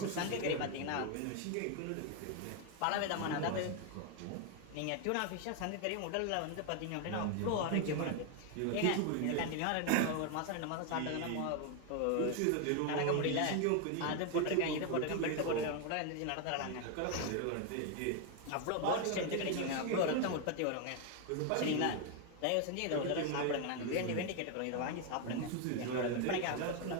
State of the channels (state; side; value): different; both; correlation 0.01